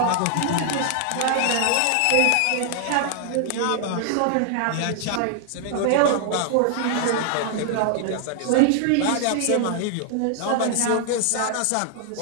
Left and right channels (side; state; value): both; different; correlation 0.00